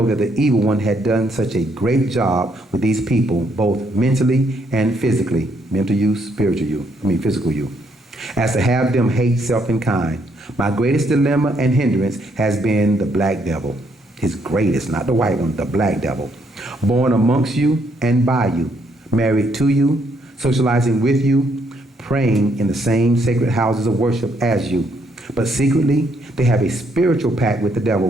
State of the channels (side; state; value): both; normal; correlation 0.72